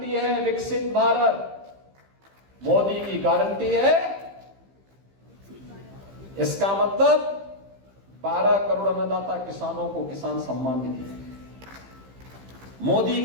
है, विकसित भारत। मोदी की गारंटी है, इसका मतलब 12 करोड़ अन्नदाता किसानों को किसान सम्मान निधि। मोदी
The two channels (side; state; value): left; late; 15 ms